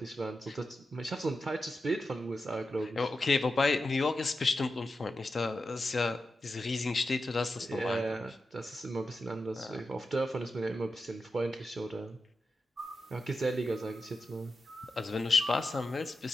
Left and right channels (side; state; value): both; normal; correlation 0.89